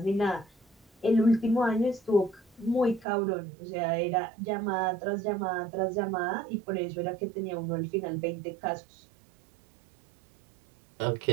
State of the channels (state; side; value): drops out; left; at 3.1 s